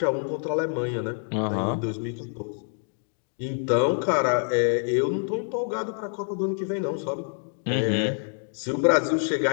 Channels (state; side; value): silent; right; 57 dB below the other